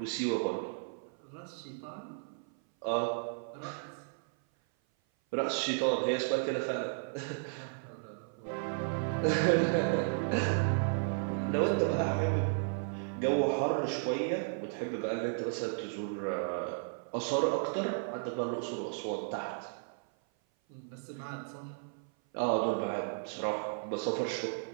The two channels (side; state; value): left; silent; 55 dB below the other